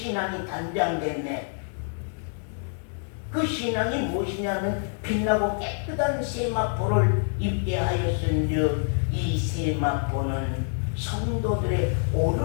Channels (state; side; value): silent; right; 59 dB below the other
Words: 단장됐네. 그 신앙이 무엇이냐면 빛나고 깨끗한 세마포를 입게 하였은즉 이 세마포는 성도들의